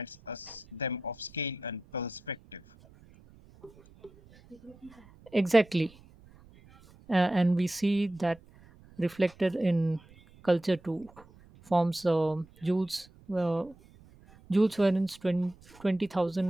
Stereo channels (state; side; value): noise; right; rumble, 25 dB below the sound